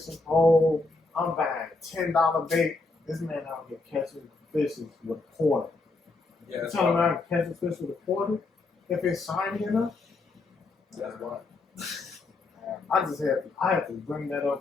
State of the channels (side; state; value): right; quieter; 3.5 dB